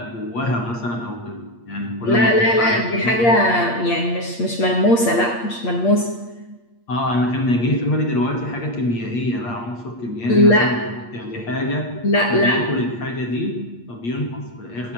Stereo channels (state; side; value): late; right; 8.5 ms